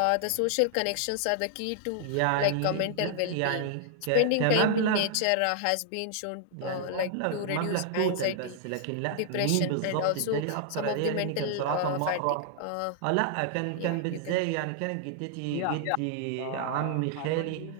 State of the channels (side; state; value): both; different; correlation -0.01